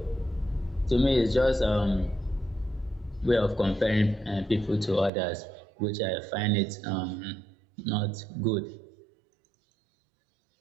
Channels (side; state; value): left; drops out; at 5.1 s